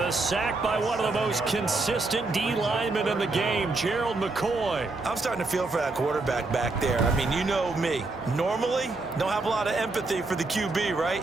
a sack by one of the most consistent D linemen in the game, Gerald McCoy. I'm starting to feel for that quarterback back there. I mean, you know me. Normally, don't have a lot of empathy for the QB,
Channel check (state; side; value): quieter; left; 3.4 dB